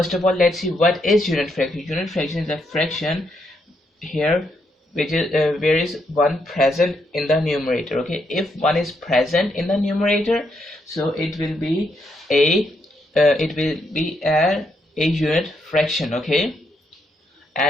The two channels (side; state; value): both; normal; correlation 0.78